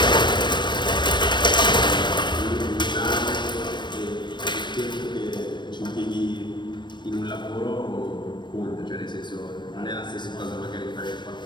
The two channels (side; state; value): right; late; 0.22 ms